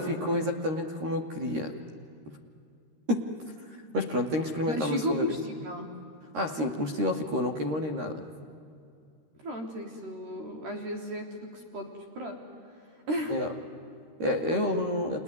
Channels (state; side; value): late; left; 13 ms